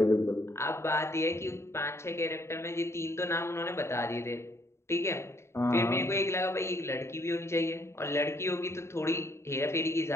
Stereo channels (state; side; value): late; right; 0.13 ms